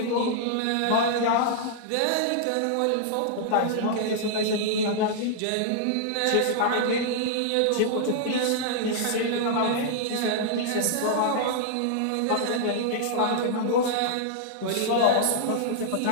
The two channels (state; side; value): different; both; correlation -0.01